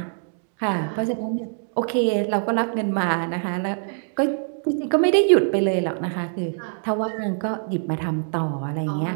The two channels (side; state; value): left; silent; digital silence